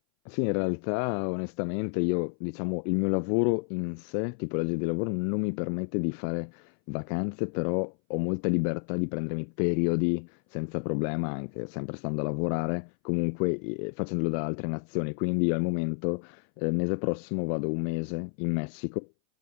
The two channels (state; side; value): silent; right; 58 dB below the other